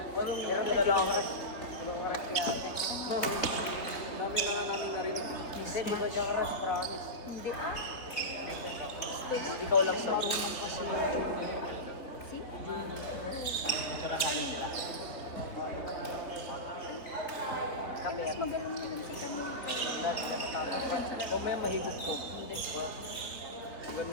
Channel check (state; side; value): late; right; 4.0 ms